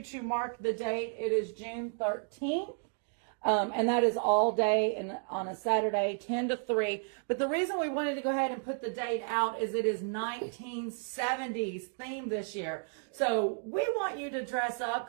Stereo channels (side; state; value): left; silent; 56 dB below the other